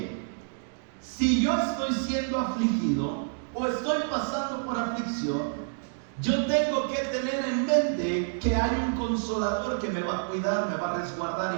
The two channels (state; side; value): silent; left; digital silence